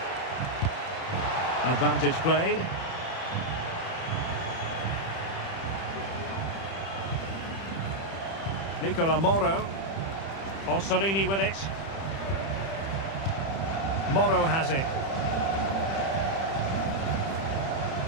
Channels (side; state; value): right; late; 31 ms